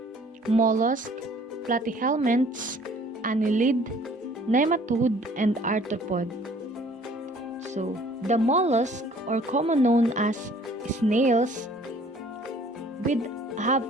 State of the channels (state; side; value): normal; both; correlation 0.55